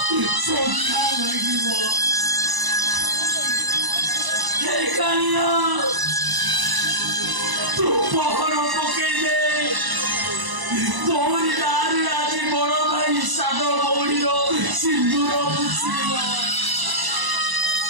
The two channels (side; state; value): left; late; 1.0 ms